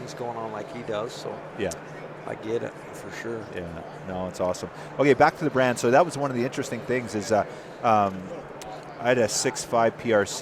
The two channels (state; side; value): identical; both; correlation 1.00